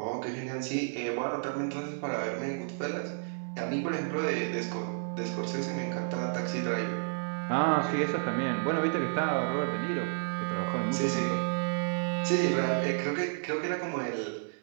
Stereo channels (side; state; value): left; silent; digital silence